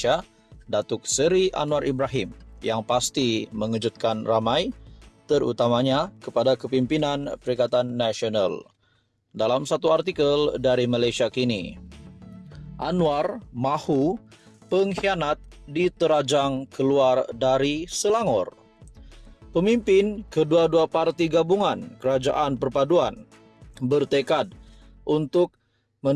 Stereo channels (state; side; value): identical; both; correlation 1.00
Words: Datuk Seri Anwar Ibrahim, yang pasti mengejutkan ramai, terutamanya kepada kepimpinan Perikatan Nasional. Dalam satu artikel dari Malaysia Kini, Anwar mahu pengkhianat diterajang keluar dari Selangor. Pemimpin kedua-dua parti gabungan Kerajaan Perpaduan bertekad untuk